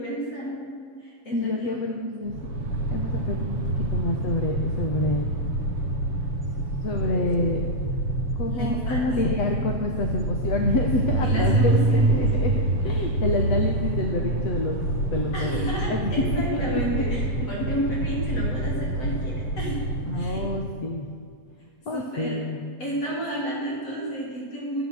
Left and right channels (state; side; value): late; right; 7.9 ms